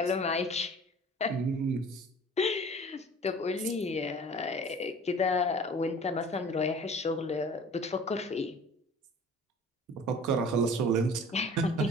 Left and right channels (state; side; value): normal; both; correlation 0.46